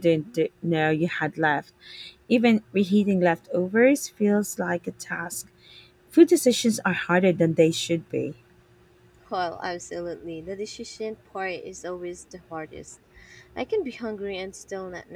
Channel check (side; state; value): both; identical; correlation 1.00